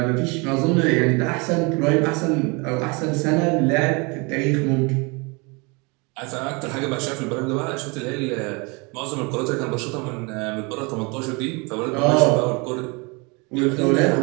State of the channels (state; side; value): quieter; left; 29.1 dB